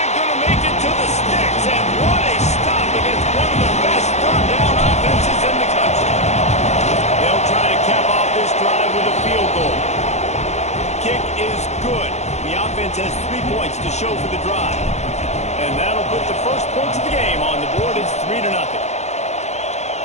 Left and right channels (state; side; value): late; right; 0.33 ms